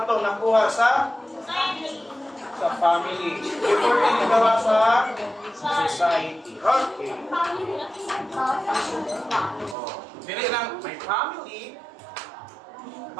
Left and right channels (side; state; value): left; drops out; at 9.8 s